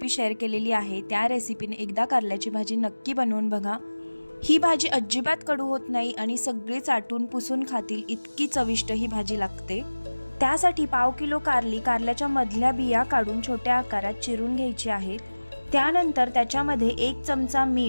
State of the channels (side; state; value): both; inverted; correlation -1.00